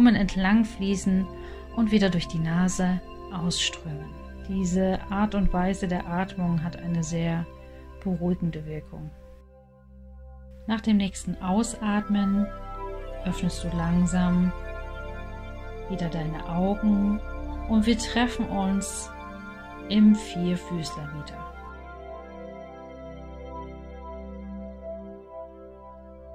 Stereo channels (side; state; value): both; identical; correlation 1.00